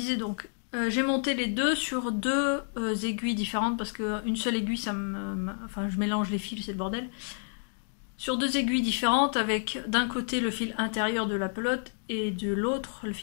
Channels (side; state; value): right; silent; 58 dB below the other